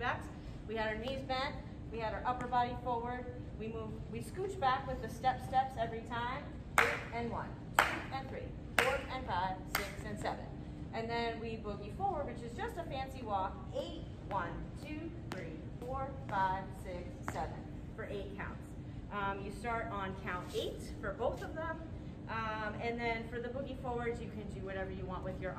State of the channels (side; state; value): both; identical; correlation 1.00